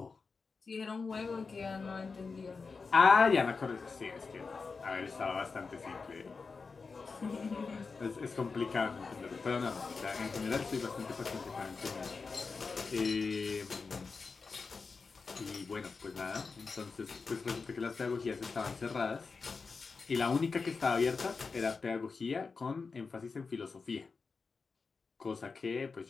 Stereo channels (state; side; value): quieter; right; 4.6 dB